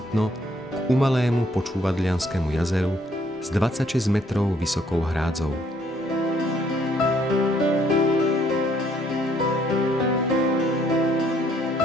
k umalému Počúvadlianskému jazeru s 26 metrov vysokou hrádzou.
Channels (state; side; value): normal; both; correlation 0.66